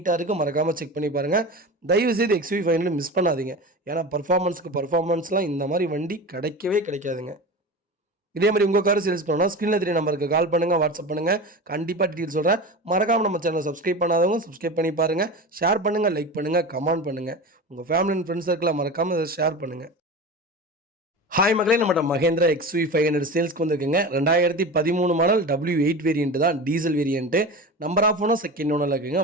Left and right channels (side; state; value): both; normal; correlation 0.29